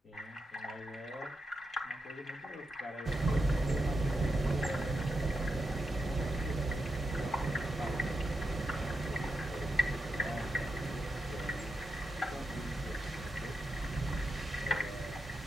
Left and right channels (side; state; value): both; normal; correlation 0.86